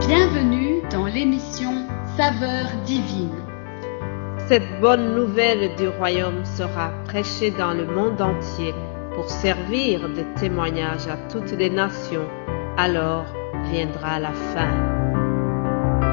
Bienvenue dans l'émission Saveurs divines. Cette bonne nouvelle du royaume sera prêchée dans le monde entier pour servir de témoignage à toutes les nations. Alors viendra la fin.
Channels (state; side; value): silent; right; digital silence